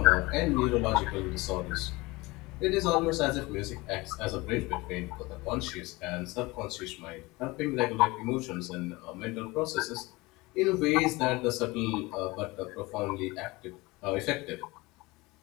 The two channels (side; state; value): right; quieter; 22.5 dB